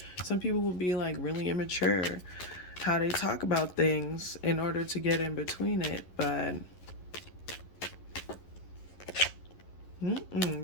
Some people will be like really immature how they talk about things in order to get in between it, but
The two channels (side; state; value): right; late; 11 ms